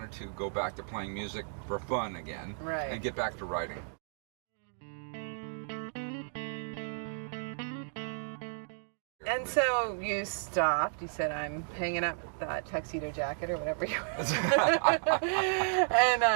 to go back to playing music for fun again and get back to writing. And so you stopped. You said, I'm hanging up that tuxedo jacket or whatever you were.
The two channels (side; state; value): left; silent; digital silence